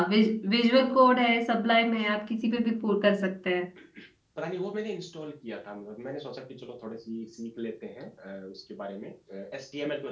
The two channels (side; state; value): both; identical; correlation 1.00